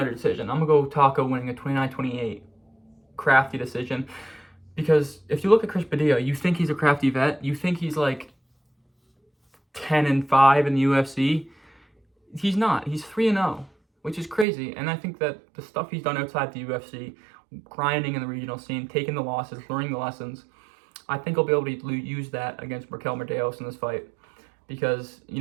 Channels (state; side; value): drops out; left; at 14.5 s